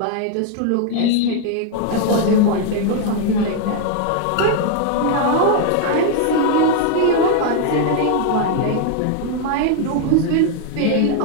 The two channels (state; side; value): different; both; correlation 0.00